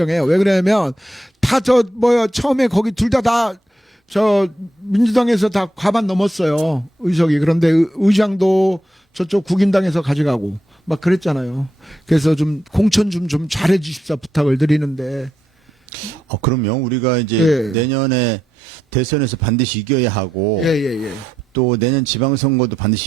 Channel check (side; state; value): both; normal; correlation 0.82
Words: 왜 그러냐면, 처음에 거기 둘 다 민주당에서 다 과반 넘었어요. 의석이. 그런데 의장도 저쪽 국민당에서 가져가고, 막 그랬잖아요. 그래서 좀 공천 좀 잘해 주십사 부탁을 드리는데. 그럼요. 우리가 이제 예. 내년에 대선에서 반드시 이겨야 하고, 예. 또 내년 지방선거도